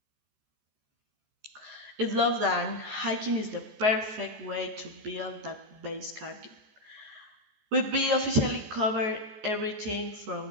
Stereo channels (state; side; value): late; left; 14 ms